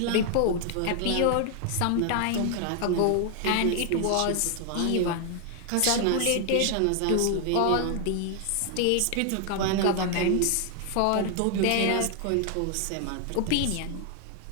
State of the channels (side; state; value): both; different; correlation 0.00